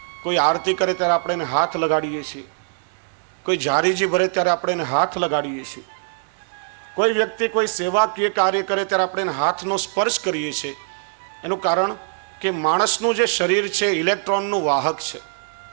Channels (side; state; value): left; silent; digital silence